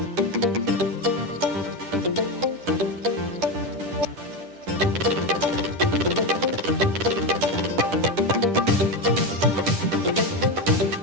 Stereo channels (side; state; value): left; late; 10 ms